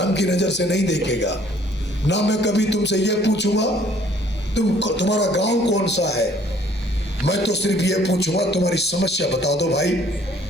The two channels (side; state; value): both; normal; correlation 0.59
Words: की नजर से नहीं देखेगा। ना मैं कभी तुमसे यह पूछूंगा तुम्हारा गांव कौन सा है, मैं तो सिर्फ ये पूछूंगा तुम्हारी समस्या बता दो भाई।